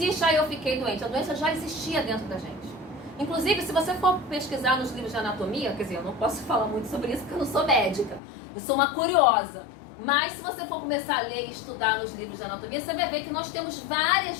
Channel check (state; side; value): drops out; right; at 8.2 s